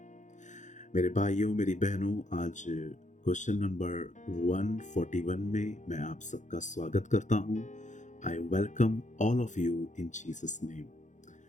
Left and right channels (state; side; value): late; right; 0.36 ms